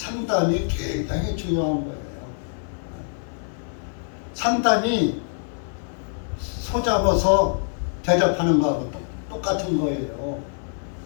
굉장히 중요한 거예요. 상담이 소 잡아서 대접하는 거하고 똑같은 거예요.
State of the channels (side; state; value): right; silent; digital silence